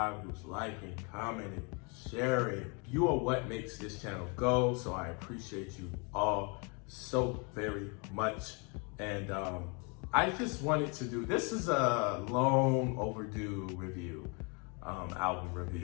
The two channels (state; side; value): quieter; right; 33.5 dB